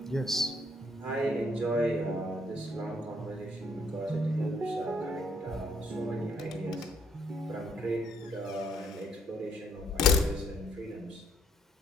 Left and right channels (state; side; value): normal; both; correlation 0.68